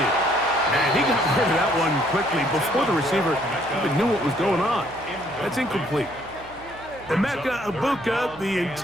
And he got rid of that one quickly before the receiver even knew what was going on. That's incomplete. Emeka Ibuka, the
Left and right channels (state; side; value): noise; right; hum, 21 dB below the sound